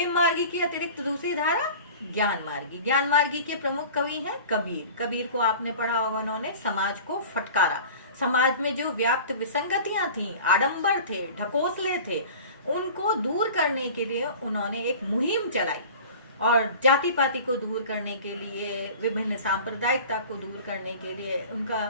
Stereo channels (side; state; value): both; inverted; correlation -0.40